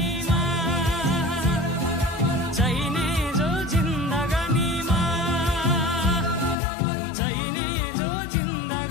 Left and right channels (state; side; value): drops out; right; at 6.6 s